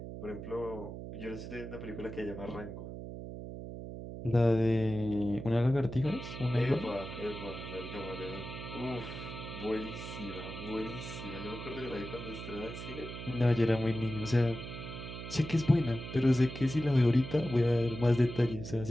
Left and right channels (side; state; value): right; noise; hum, 9 dB below the sound